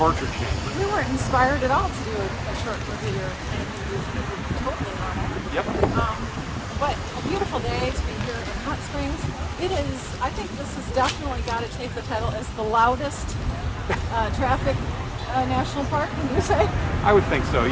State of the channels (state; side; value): identical; both; correlation 1.00